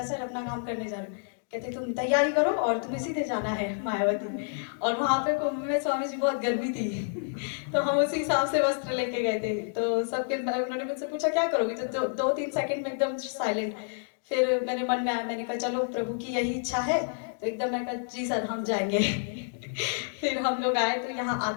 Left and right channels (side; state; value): right; silent; digital silence